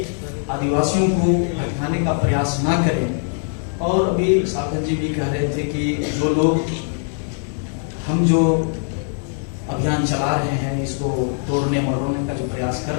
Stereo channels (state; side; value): silent; right; 65 dB below the other